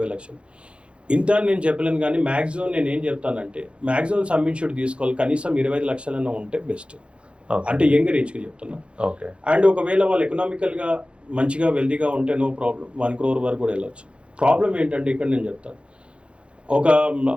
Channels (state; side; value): late; left; 0.059 ms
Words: లక్షలు. ఇంత నేను చెప్పలేను, కానీ మ్యాక్సిమం నేను ఏం చెప్తానంటే మ్యాక్సిమం సబ్మిషన్ తీసుకోవాలి, కనీసం 25 లక్షలన్నా ఉంటే బెస్ట్. అంటే యంగ్ రేజ్కి చెప్తున్నా. ఓకే. అండ్ ఒకవేళ వాళ్ళు ఎకనామికల్గా మంచిగా వెల్దీగా ఉంటే నో ప్రాబ్లం, 1 crore వరకు కూడా వెళ్ళొచ్చు. ప్రాబ్లం ఏంటంటే ఇక్కడ నేను చెప్తాను, ఒక